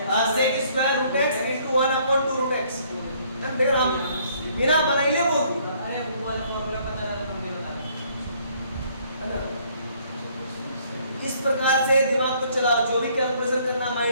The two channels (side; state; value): both; inverted; correlation -0.63